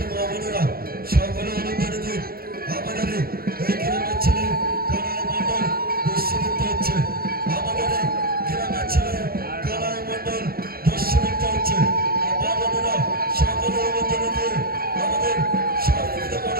মা বোনেরা সকলে অনুদানে দিন। আমাদের এই গ্রামের ছেলে কানাই মণ্ডল দস্যুবৃত্ত হচ্ছে। আমাদের এই গ্রামের ছেলে কানাই মণ্ডল দস্যুবৃত্ত হচ্ছে। মা বোনেরা সকলে অনুদানে দিয়ে আমাদের সহযোগিতা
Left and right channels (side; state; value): left; late; 0.44 ms